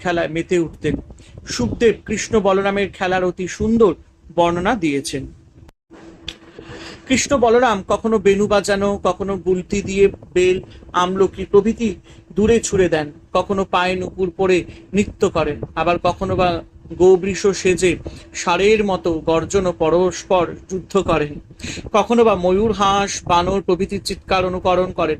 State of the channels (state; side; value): identical; both; correlation 1.00